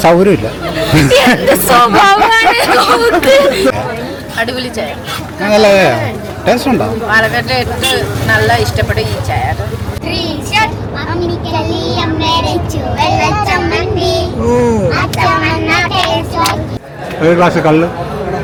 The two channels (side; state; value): both; identical; correlation 1.00